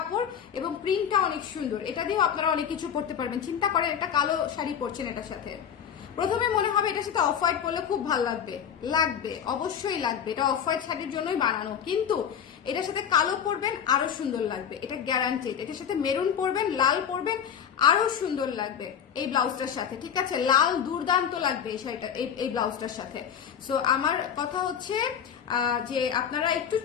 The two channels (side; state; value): right; quieter; 8.2 dB